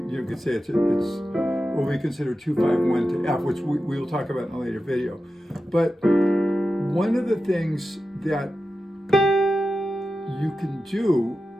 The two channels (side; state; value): both; normal; correlation 0.92